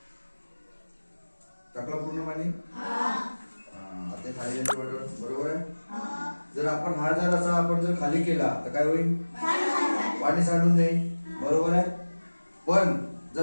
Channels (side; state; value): both; inverted; correlation -1.00